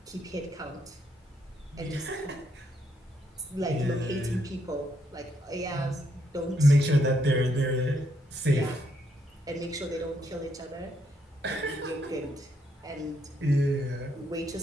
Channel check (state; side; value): normal; both; correlation 0.75